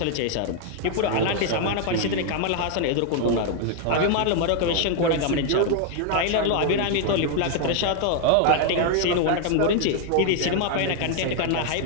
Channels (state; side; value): different; both; correlation 0.00